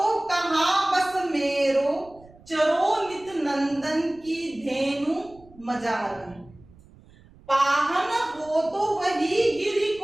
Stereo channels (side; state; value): right; noise; rumble, 25 dB below the sound